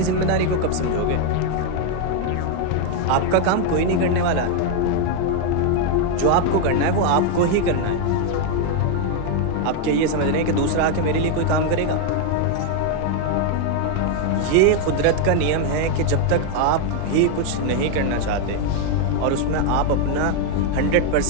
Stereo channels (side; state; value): both; different; correlation 0.00